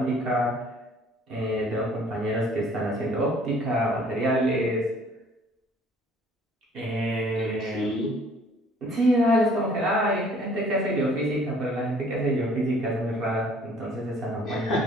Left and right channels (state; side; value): normal; both; correlation 0.56